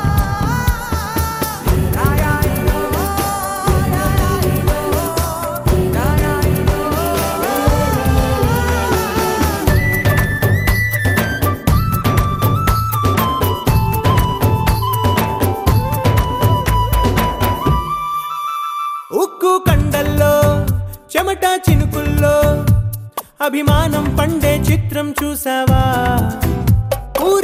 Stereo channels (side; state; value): both; identical; correlation 1.00